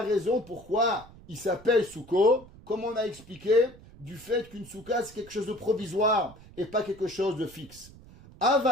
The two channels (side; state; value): right; noise; rumble, 21 dB below the sound